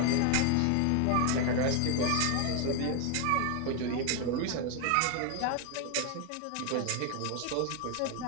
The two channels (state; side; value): different; both; correlation 0.01